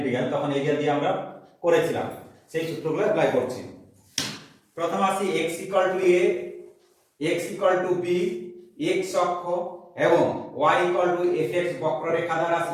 তখন এরিয়া দিয়ে আমরা করেছিলাম, সেই সূত্রগুলো অ্যাপ্লাই করছি। প্রথম আসি x = a, x = b, x অক্ষ এবং y = fx বক্ররেখা দ্বারা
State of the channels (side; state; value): both; identical; correlation 1.00